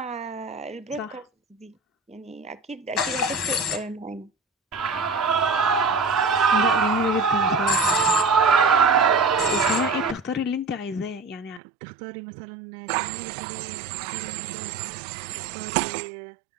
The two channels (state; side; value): drops out; left; at 11.6 s